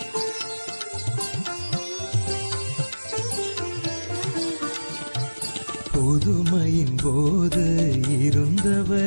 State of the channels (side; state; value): both; inverted; correlation -1.00